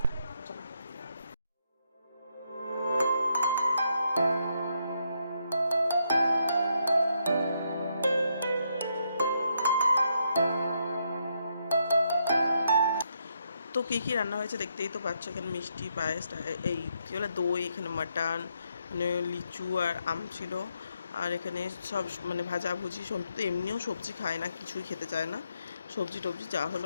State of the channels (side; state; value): both; inverted; correlation -0.77